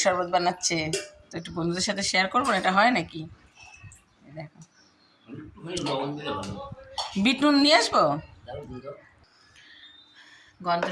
শরবত বানাচ্ছে, তো একটু বন্ধুদের সাথে শেয়ার করবো না, এটা হয় নাকি? এই দেখো, একটুখানি লবণ দিলে ভালো। বিট নুন নিয়ে আসবো। দাও দিয়ে দাও।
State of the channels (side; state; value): both; identical; correlation 1.00